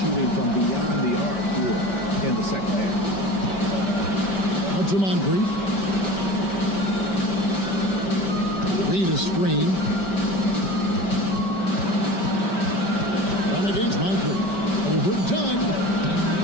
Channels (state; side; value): late; right; 5.2 ms